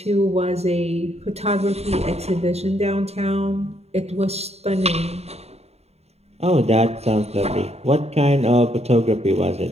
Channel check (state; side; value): late; left; 0.30 ms